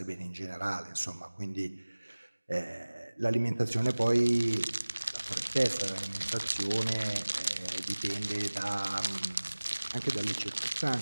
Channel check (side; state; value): both; inverted; correlation -1.00